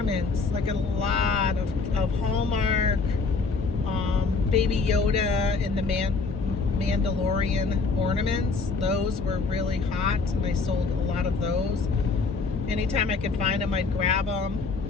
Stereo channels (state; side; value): quieter; right; 4.3 dB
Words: like a lot of Hallmark, Baby Yoda and the Mandalorian ornaments. Those were really hot, and I sold a lot of those. Anytime I could find them, I'd grab them.